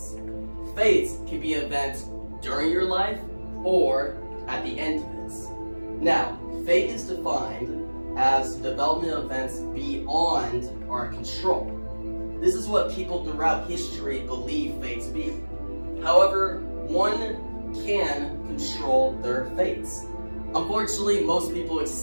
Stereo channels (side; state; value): both; inverted; correlation -1.00